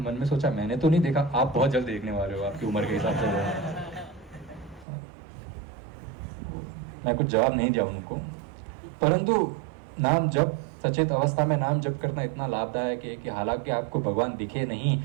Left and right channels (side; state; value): left; drops out; at 4.9 s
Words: मन में सोचा मैंने तो नहीं देखा, आप बहुत जल्द देखने वाले हो, आपकी उम्र के हिसाब से। मैं कुछ जवाब नहीं दिया उनको, परंतु नाम जप, सचेत अवस्था में नाम जप करना इतना लाभदायक है कि हालांकि आपको भगवान दिखे नहीं,